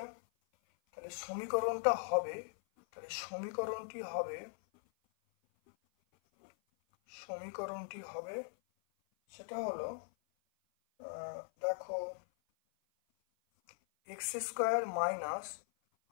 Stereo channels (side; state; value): right; silent; 51 dB below the other